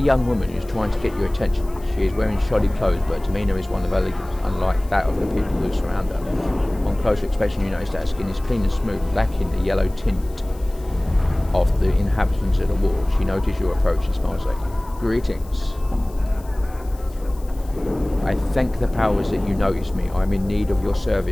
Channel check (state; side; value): noise; left; hiss, 25 dB below the sound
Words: woman who's trying to get your attention. She is wearing shoddy clothes, but her demeanour is one of elegance, unlike that of the people who surround her. On closer inspection, you notice that her skin is clean and smooth, lacking the yellow tint of the inhabitants of the ward. She notices your approach and smiles at you. Greetings. I thank the powers that you notice me. I am in need of your